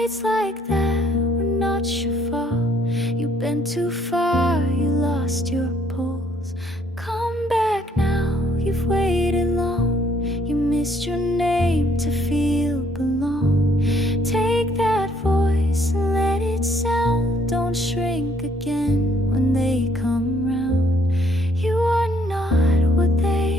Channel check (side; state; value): both; normal; correlation 0.66